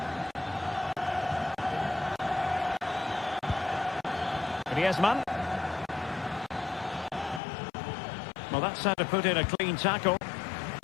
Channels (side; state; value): right; drops out; at 7.4 s